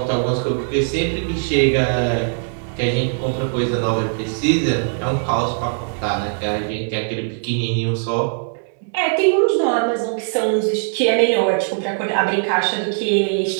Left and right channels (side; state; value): left; silent; digital silence